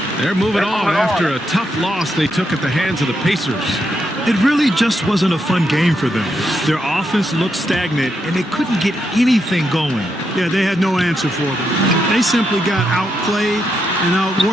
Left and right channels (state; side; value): normal; both; correlation 0.81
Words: They're moving on after a tough loss they took at the hands of the Pacers. It really just wasn't a fun game for them. Their offense looked stagnant, and they couldn't get anything going. Yeah, they had no answer for them. They simply got outplayed and